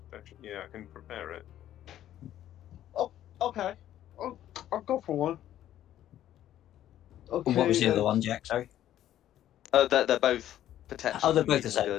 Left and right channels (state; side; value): quieter; right; 12.1 dB